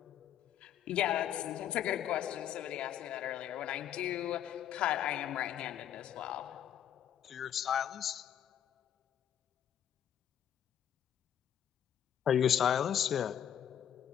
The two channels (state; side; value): quieter; right; 10.0 dB